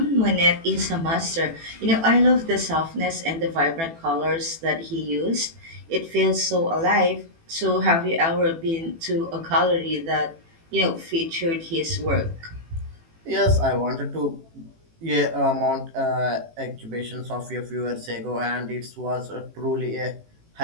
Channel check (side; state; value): left; late; 18 ms